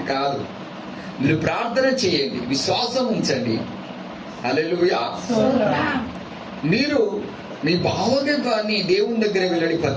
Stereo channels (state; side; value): identical; both; correlation 1.00